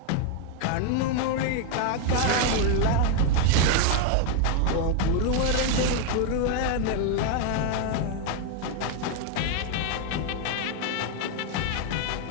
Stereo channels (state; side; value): different; both; correlation 0.01